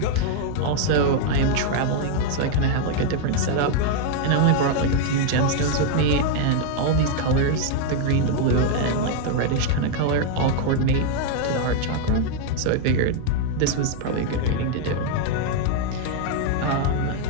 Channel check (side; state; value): both; different; correlation 0.00